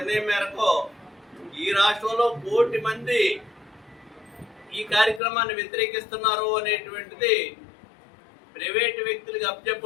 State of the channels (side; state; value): right; drops out; at 5.2 s